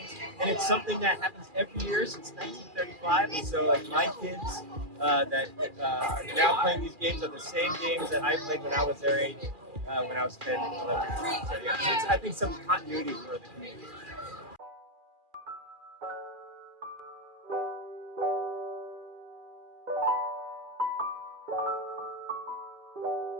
and it's something that happens every year since 1935. And so, like my kids that are now playing these games are the same games that I played when I was their age, when I was 10, 11. So yeah, it's, I think some continuity for the community.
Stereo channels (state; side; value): late; left; 2.4 ms